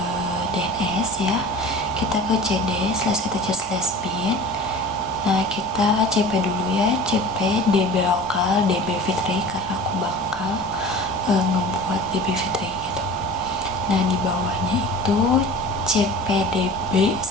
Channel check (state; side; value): normal; both; correlation 0.40